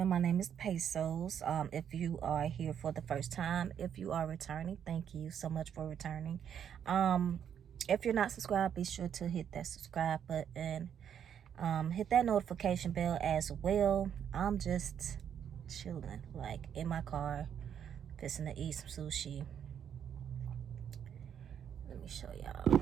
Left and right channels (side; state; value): left; quieter; 8.7 dB